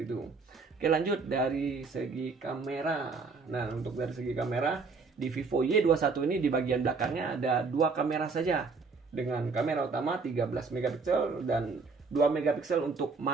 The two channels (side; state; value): left; quieter; 4.5 dB